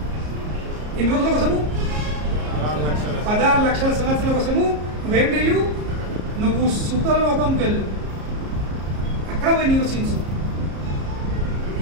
ఎన్ని రోజుల కోసము? 16 లక్షల సంవత్సరాల కోసము. నువ్వేం చేయు? నువ్వు సుతల లోకంకి వెళ్ళు, అక్కడ పోయి నివసించు.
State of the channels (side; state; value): left; late; 34 ms